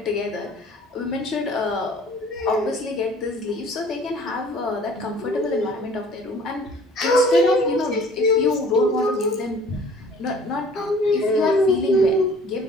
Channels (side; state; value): both; normal; correlation 0.51